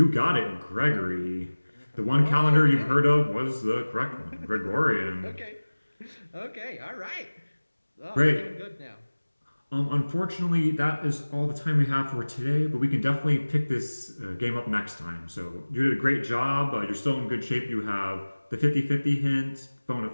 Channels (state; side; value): inverted; both; correlation -1.00